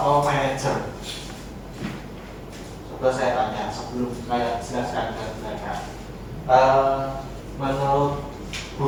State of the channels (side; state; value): both; identical; correlation 1.00